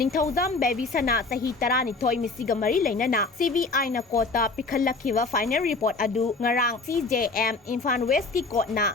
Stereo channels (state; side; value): quieter; right; 3.8 dB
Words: ꯕꯦꯕꯤꯁꯅꯥ ꯆꯍꯤ 12 ꯃꯤꯁꯤꯒ ꯃꯔꯤ ꯂꯩꯅꯅ CBIꯅ ꯀꯣꯔꯠꯇ ꯄꯤꯈꯠꯂꯛꯈꯤꯕ ꯐꯥꯏꯅꯦꯜ ꯔꯤꯄꯣꯔꯠ ꯑꯗꯨ ꯉꯔꯥꯡ CJM ꯏꯝꯐꯥꯜ ꯋꯦꯁꯀꯤ ꯀꯣꯔꯠꯅ